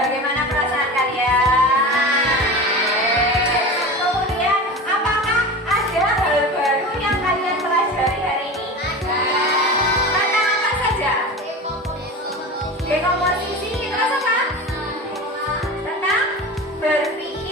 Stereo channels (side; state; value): both; normal; correlation 0.30